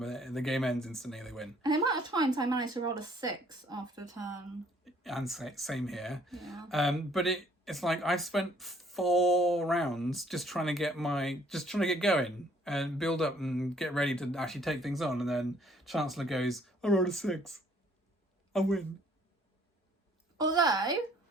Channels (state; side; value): normal; both; correlation 0.61